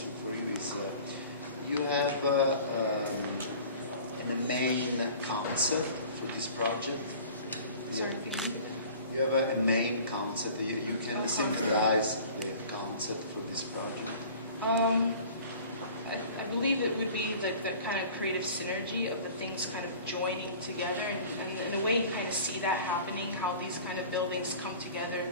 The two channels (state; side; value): inverted; both; correlation -0.45